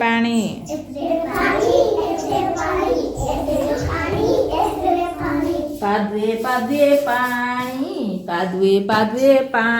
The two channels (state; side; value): identical; both; correlation 1.00